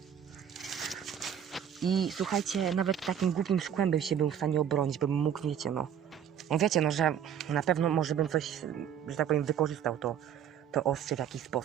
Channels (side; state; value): left; quieter; 9.0 dB